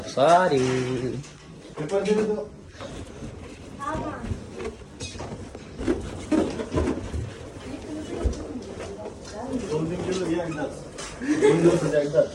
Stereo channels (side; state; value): both; identical; correlation 1.00